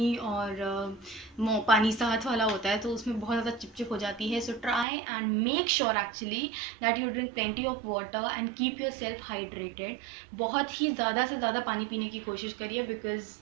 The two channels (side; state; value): left; drops out; at 4.9 s